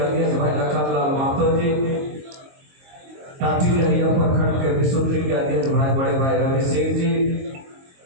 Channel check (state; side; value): late; left; 22 ms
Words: भाई लखनलाल महतो जी, टाटी डलिया प्रखंड के विशुद्री के अध्यक्ष भाई बड़े भाई रवि सिंह जी,